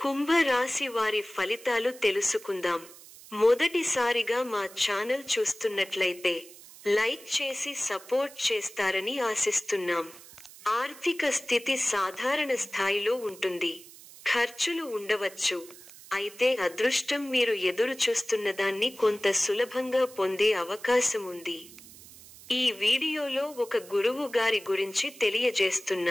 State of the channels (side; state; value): right; noise; hiss, 19 dB below the sound